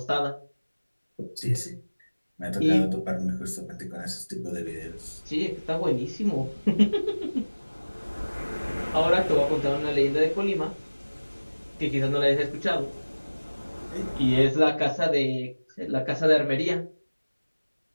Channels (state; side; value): inverted; both; correlation -1.00